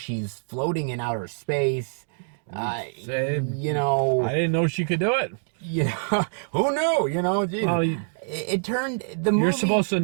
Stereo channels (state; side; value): silent; left; digital silence